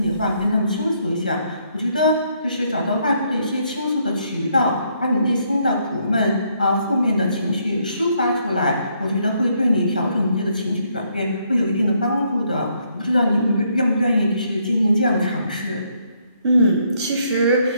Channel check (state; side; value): inverted; both; correlation -0.72